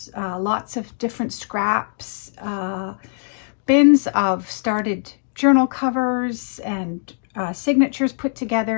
lots of different scraps, bins of started journal covers and signatures put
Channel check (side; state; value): right; silent; digital silence